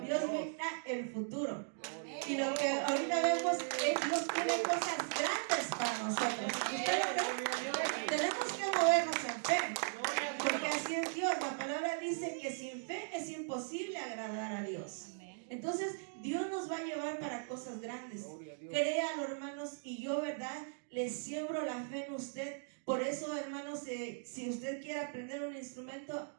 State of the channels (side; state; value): left; silent; digital silence